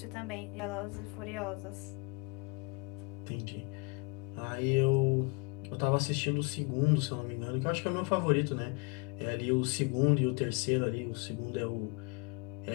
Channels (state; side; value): quieter; right; 32.6 dB